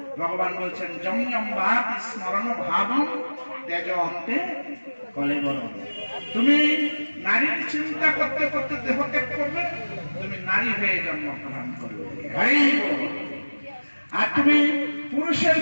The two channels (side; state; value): both; inverted; correlation -1.00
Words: ভগবান বলছেন যম্যম্বাতি স্মরণ ভাবম ত্যাজ অন্তে কলেবরম। তুমি নারীর চিন্তা করতে করতে দেহ ত্যাগ করবে, তুমি নারী হয়ে জন্মগ্রহণ করবে। আর তুমি পুরুষের